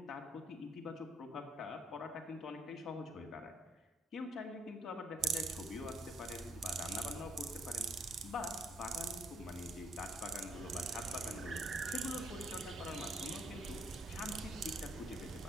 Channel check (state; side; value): normal; both; correlation 0.67